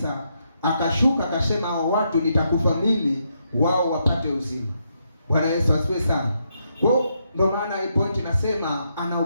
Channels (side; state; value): both; inverted; correlation -0.79